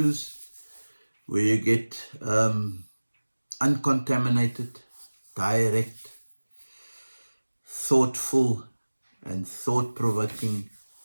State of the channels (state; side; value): inverted; both; correlation -1.00